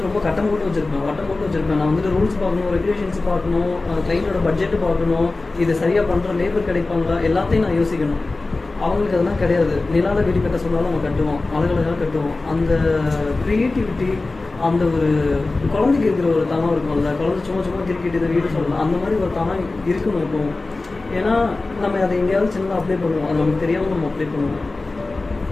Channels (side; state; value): right; quieter; 3.4 dB